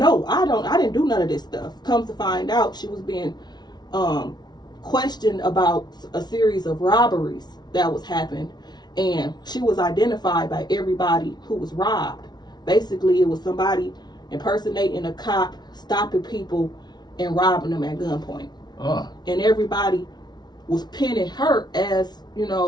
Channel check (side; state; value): right; late; 0.20 ms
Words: I didn't do none of this stuff. Comes to find out, she was being questioned about a series of robberies that was happened. And she was identified by everybody who was robbed. Basically, it was somebody impersonating a cop, stopping people, and robbing them at gunpoint. And everybody was pinning her as,